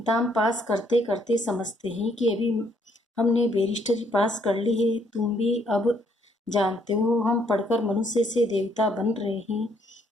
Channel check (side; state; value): both; normal; correlation 0.69